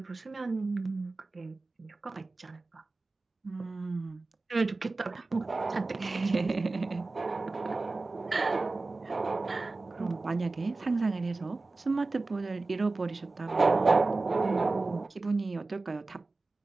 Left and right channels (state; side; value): quieter; left; 3.4 dB